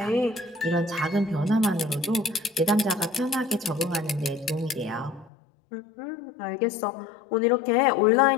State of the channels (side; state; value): right; drops out; at 5.3 s